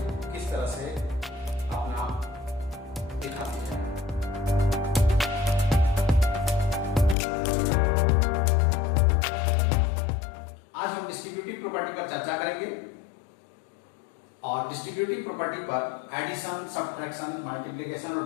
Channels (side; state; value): right; drops out; at 7.2 s